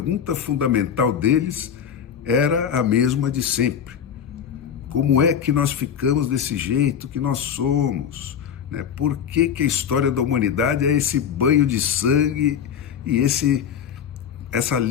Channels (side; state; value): right; quieter; 8.2 dB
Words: fundamental deles era a mesma de sempre. Como é que nós ficamos desse jeito que nós somos? Por que a história da humanidade é esse banho de sangue e essa